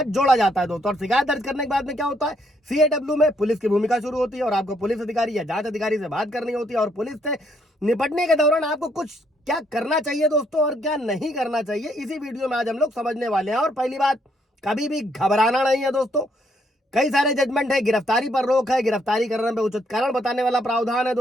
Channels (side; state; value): both; normal; correlation 0.71